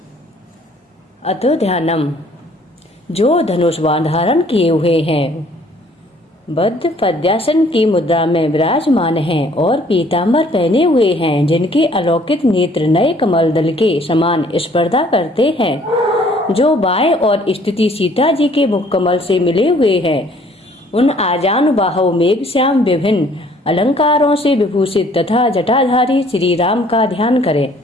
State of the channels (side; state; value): both; normal; correlation 0.59